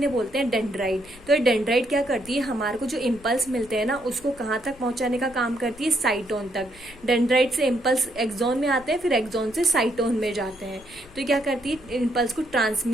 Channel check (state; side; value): noise; left; rumble, 23 dB below the sound